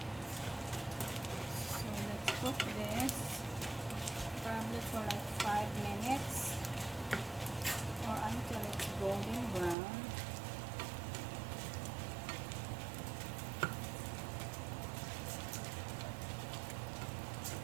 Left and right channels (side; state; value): left; drops out; at 9.8 s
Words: So let's cook this probably for like 5 minutes or until it's golden brown.